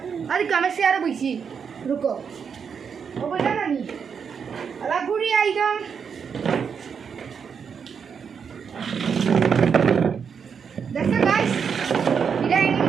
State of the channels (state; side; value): quieter; left; 6.6 dB